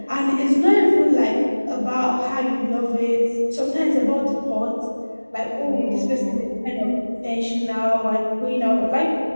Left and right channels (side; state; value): both; inverted; correlation -1.00